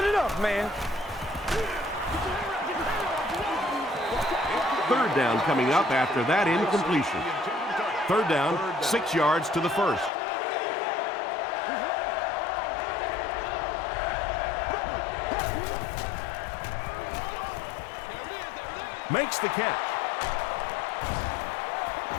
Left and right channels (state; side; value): drops out; right; at 10.1 s